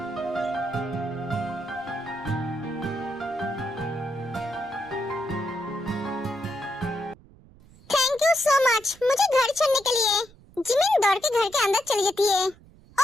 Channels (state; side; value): noise; right; rumble, 25 dB below the sound